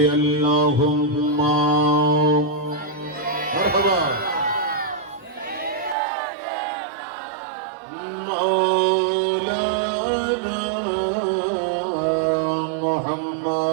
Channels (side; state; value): left; drops out; at 6.0 s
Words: আল্লাহুম্মা মারহাবা মাওলানা